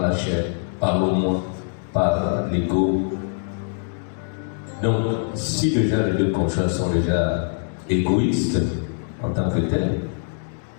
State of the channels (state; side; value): silent; right; digital silence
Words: chair, par le moi, par l'ego. Donc si déjà les deux conjoints sont déjà égoïstes en tant que tels,